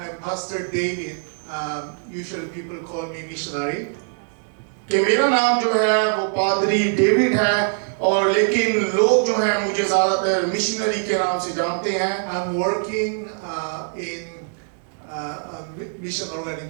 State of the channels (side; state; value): left; silent; digital silence